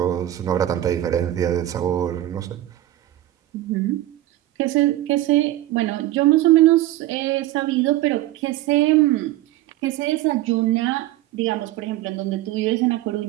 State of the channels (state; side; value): quieter; left; 14.9 dB